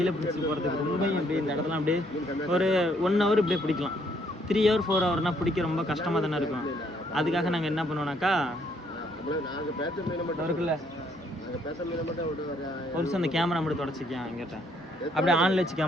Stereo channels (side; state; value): both; normal; correlation 0.68